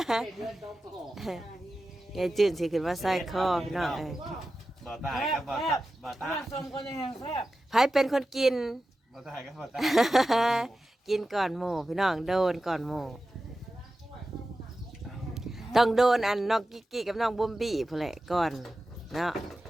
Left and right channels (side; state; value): both; normal; correlation 0.93